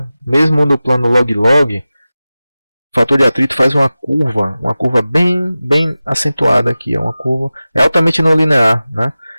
Mesmo no plano log-log, o fator de atrito faz uma curva bem acentuada aqui. Uma curva é altamente não linear. Né?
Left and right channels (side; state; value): both; inverted; correlation -0.96